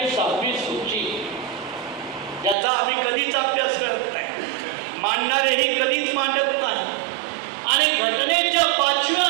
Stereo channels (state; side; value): drops out; left; at 2.6 s